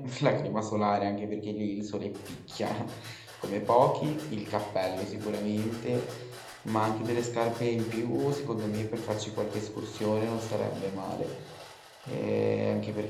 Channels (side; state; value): both; identical; correlation 1.00